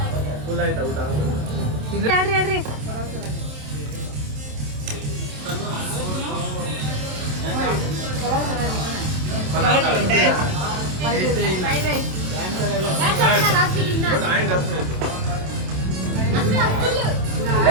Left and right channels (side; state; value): left; late; 27 ms